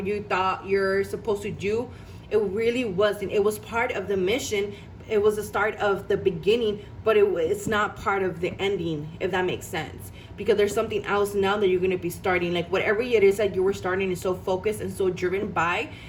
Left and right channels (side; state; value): both; identical; correlation 1.00